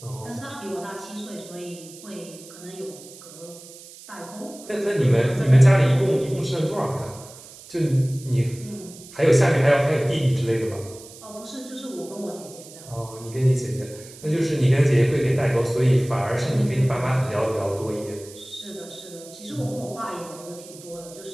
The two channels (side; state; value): right; noise; hiss, 18 dB below the sound